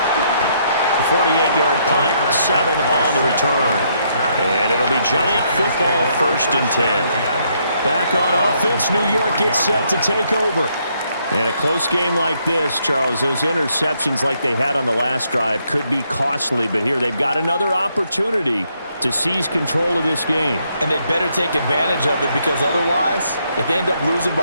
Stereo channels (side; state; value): both; inverted; correlation -0.73